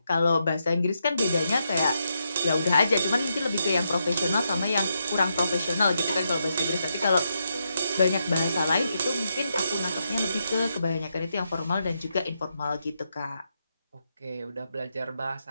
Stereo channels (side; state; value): both; inverted; correlation -0.82